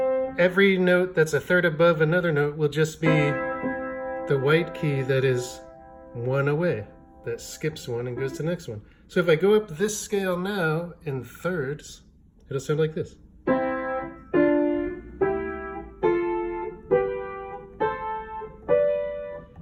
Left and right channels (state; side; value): identical; both; correlation 1.00